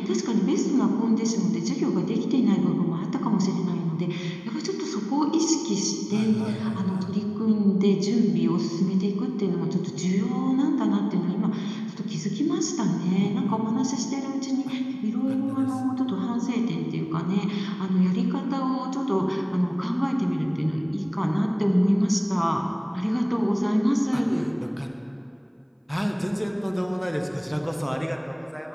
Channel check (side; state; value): both; identical; correlation 1.00